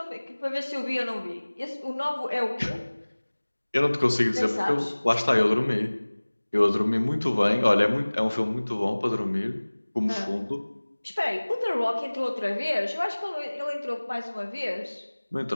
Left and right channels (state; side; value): inverted; both; correlation -1.00